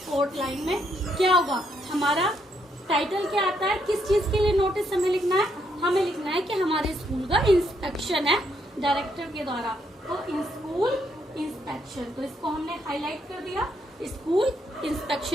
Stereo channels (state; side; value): normal; both; correlation 0.75